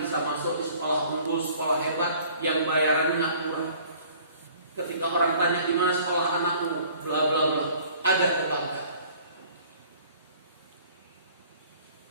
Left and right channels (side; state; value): both; inverted; correlation -0.53